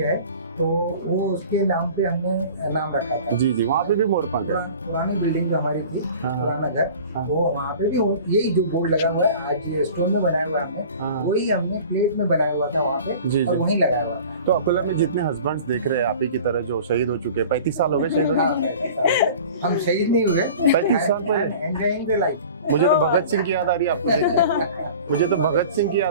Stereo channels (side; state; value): both; inverted; correlation -0.42